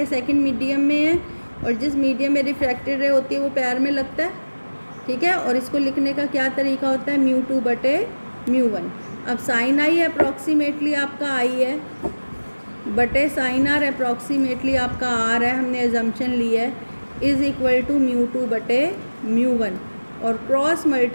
सेकंड मीडियम में है, और जिस मीडियम में रिफ्रैक्टेड रे होती है वो पैर में लगता है, ठीक है। और इसको लिखने का क्या तरीका होता है, μ2/μ1। अब साइन आई अप्रॉक्सीमेटली आपका आई है, बटे साइन आर अप्रॉक्सीमेटली आपका आर है, हमने एजम्पशन ली है, इज़ इक्वल टू μ2/μ1। और क्रॉस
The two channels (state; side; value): inverted; both; correlation -1.00